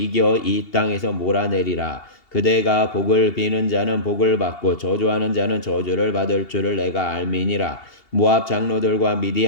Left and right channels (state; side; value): late; right; 2.8 ms